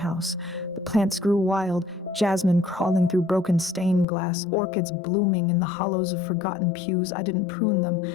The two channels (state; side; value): drops out; right; at 4.0 s